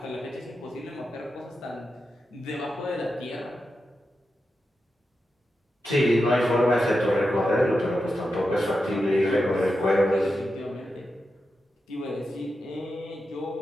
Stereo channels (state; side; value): normal; both; correlation 0.89